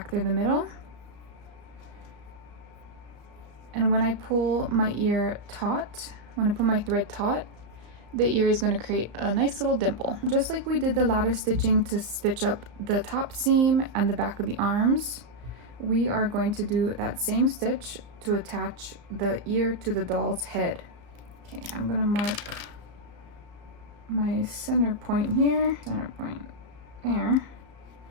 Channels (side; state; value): left; late; 34 ms